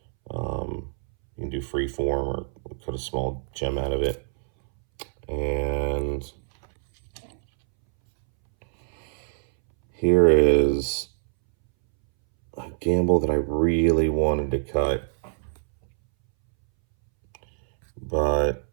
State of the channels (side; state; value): left; silent; 62 dB below the other